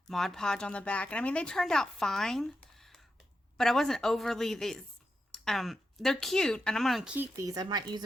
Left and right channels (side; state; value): both; normal; correlation 0.88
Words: Mod Podge on the back. And I mean, they turned out fine, but I wasn't overly, they're cute and I'm going to keep these. I might use